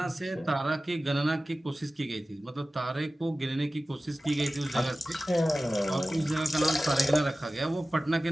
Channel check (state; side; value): normal; both; correlation 0.96